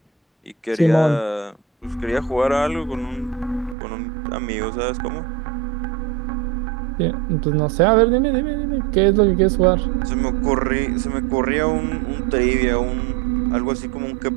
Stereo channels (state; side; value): drops out; left; at 3.8 s